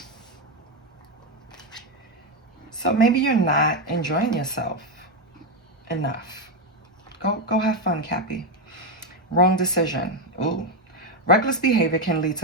So maybe you're not enjoying yourself enough. Go have fun, Cappy. Wrong decision. Ooh. Reckless behavior can lead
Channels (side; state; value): both; normal; correlation 0.08